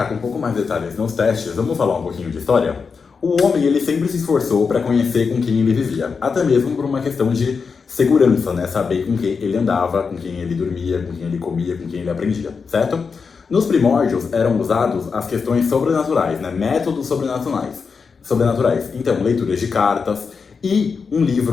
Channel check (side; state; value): right; quieter; 5.4 dB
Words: com um pouco mais de detalhes nos testes, vamos falar um pouquinho de história? O homem, ele sempre se esforçou para conhecer com quem ele vivia, até mesmo por uma questão de segurança, né? Saber com quem ele andava, com quem ele dormia, com quem ele comia, com quem ele aprendia, certo? Nos primórdios eram usados as questões sobrenaturais, né? Métodos sobrenaturais. Então, leituras de cartas e um